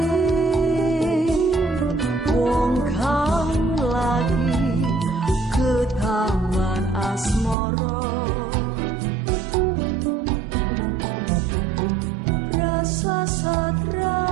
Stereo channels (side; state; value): left; drops out; at 7.6 s